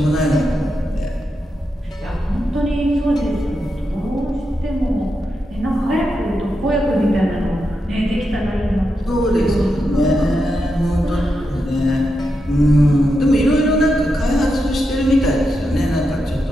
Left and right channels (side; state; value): both; normal; correlation 0.86